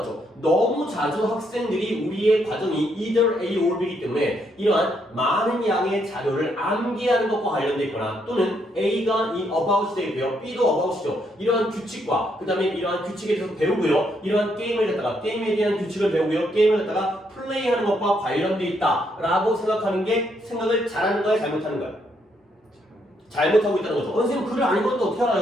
너무 자주 학생들이 우리의 과정이 either A or B이기 때문에 이러한 많은 양의 자료를 암기하는 것과 관련돼 있거나 또는 A가 이 about이 되어 있고요. B도 about이죠. 이러한 규칙과 그 다음에 이러한 규칙에 대해서 배우고요. 이러한 게임을 갖다가 게임에 대한 규칙을 배우고요. 게임을 갖다가 플레이하는 것과 관련돼 있다라고 생각하는 게 생각을 잘하는 거야, 잘못하는 거야? 잘못하고 있다는 거죠. 선생님 글을 안 읽었는데 어떻게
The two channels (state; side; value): normal; both; correlation 0.75